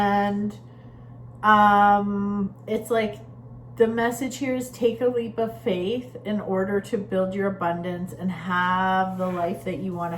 it's like the message here is take a leap of faith in order to build your abundance and have the life that you want to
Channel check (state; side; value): identical; both; correlation 1.00